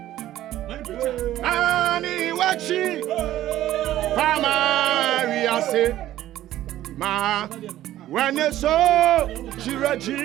Ani wachi. Pama we are say. Ma when you saw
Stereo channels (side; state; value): left; quieter; 13.6 dB